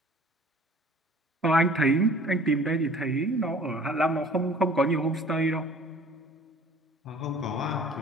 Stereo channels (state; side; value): normal; both; correlation 0.50